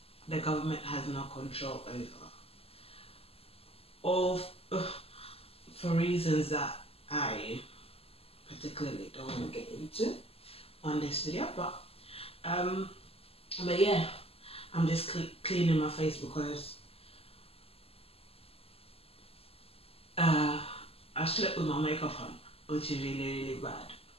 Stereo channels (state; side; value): late; right; 0.28 ms